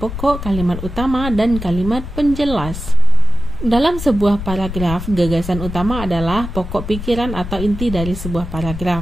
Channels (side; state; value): left; noise; rumble, 8 dB below the sound